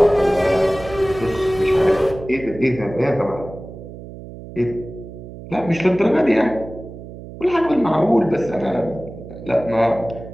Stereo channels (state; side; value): noise; right; hum, 14 dB below the sound